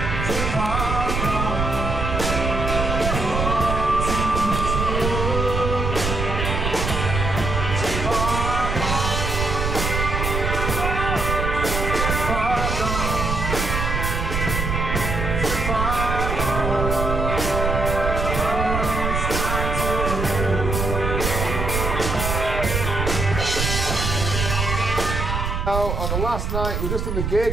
On the last night, we're just in the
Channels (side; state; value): right; noise; rumble, 2 dB below the sound